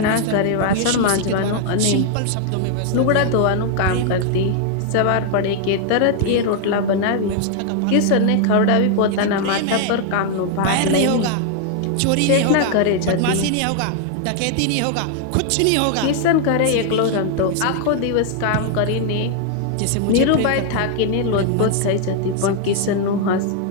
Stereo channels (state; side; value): different; both; correlation 0.00